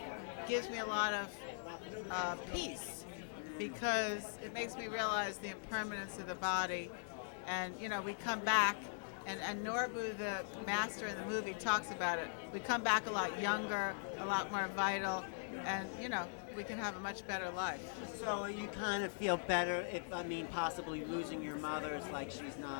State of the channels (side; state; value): right; silent; 50 dB below the other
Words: gives me a lot of peace, because it makes me realize the impermanence of the body. And we come back, and Norbu, the master in the movie, talks about it. We come back a lot younger, a lot more vital, and we can have a much better life. So you kind of feel better if, possibly losing your mother is like she's